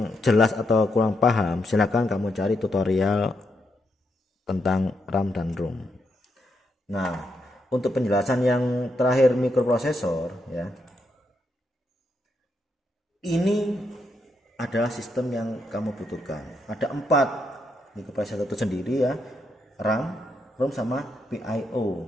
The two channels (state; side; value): normal; both; correlation 0.80